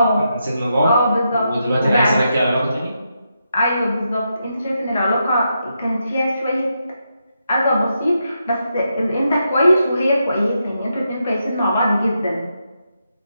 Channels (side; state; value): both; inverted; correlation -0.83